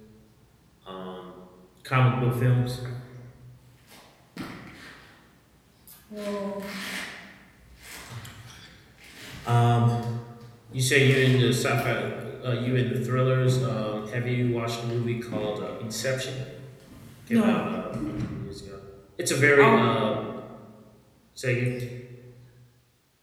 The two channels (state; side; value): identical; both; correlation 1.00